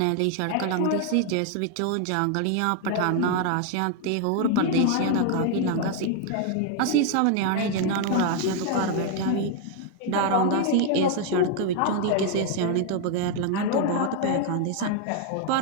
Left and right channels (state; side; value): different; both; correlation 0.00